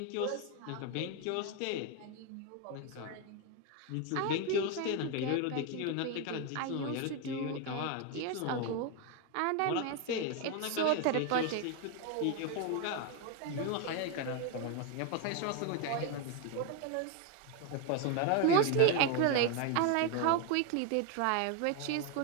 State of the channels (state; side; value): different; both; correlation 0.01